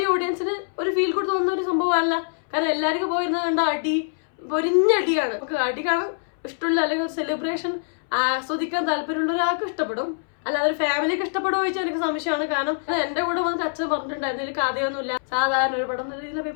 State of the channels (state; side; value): silent; right; 61 dB below the other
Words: ഓഡിയൻസിന് ഒരു ഫീൽ ഗുഡ് തോന്നുന്ന ഒരു സംഭവമല്ല. കാരണം എല്ലാവർക്കും പോയിരുന്നത് കണ്ട അടി, പൊരിഞ്ഞടിയാണ്. നമുക്ക് അടി കാണാൻ ഇഷ്ടമുള്ള, അല്ലെങ്കിൽ ഒരു സെലിബ്രേഷൻ ആസ്വദിക്കാൻ താല്പര്യമുള്ള ഒരാൾക്ക് ഇഷ്ടപ്പെടും. അല്ലാതെ ഒരു ഫാമിലിക്ക് ഇഷ്ടപ്പെടുമോ ചോദിച്ചാൽ എനിക്ക് സംശയമാണ്. കാരണം എന്റെ കൂടെ വന്നിട്ട് അച്ഛൻ പറഞ്ഞിട്ടുണ്ടായിരുന്നു ഇതിൽ കഥയൊന്നുമില്ല, സാധാരണ ഒരു പടം എന്നുള്ള രീതിയിൽ